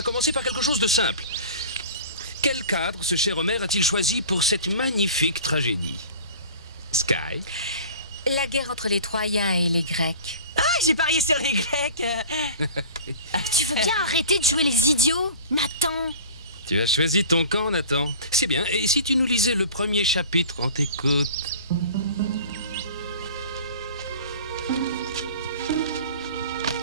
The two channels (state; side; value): inverted; both; correlation -0.40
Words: commencer par quelque chose de simple. Quel cadre ce cher Homère a-t-il choisi pour cette magnifique tragédie? Sky? La guerre entre les Troyens et les Grecs. Ah, j'ai parié sur les Grecs. Tu veux bien arrêter de jouer les idiots, Nathan? Tu as choisi ton camp, Nathan. C'est bien. Et si tu nous lisais le premier chapitre, on t'écoute.